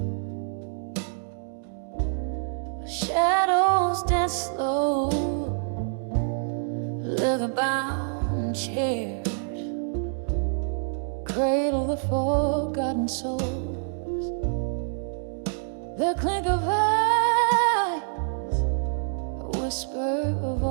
shadows dance slow, leather-bound chairs cradle the forgotten souls. The clink of eyes, a whisper of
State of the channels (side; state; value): left; silent; digital silence